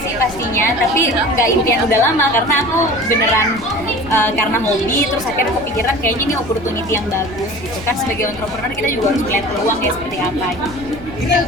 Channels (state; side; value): noise; left; rumble, 16 dB below the sound